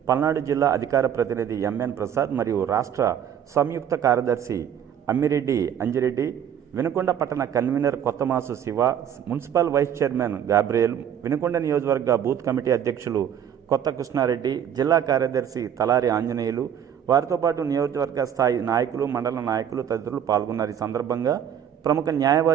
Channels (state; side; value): quieter; left; 9.1 dB